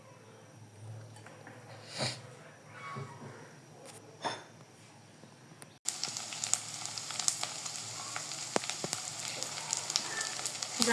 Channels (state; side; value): identical; both; correlation 1.00